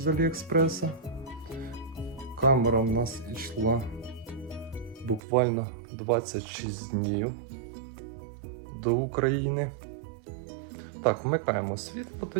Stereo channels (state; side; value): drops out; left; at 5.2 s